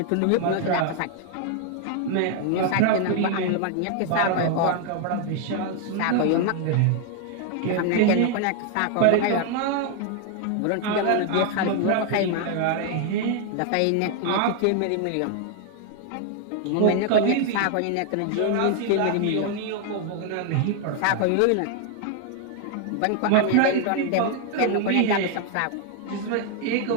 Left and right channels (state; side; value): different; both; correlation 0.00